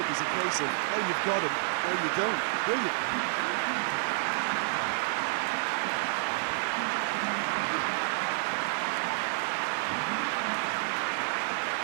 was a case of, oh, you've got him, no, you don't. Brilliant.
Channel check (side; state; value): left; silent; digital silence